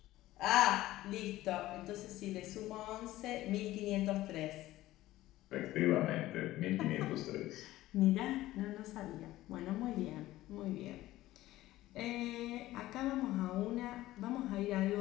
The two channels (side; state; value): right; quieter; 16.1 dB